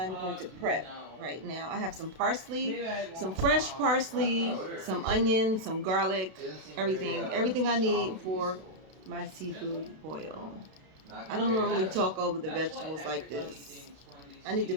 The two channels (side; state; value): left; late; 32 ms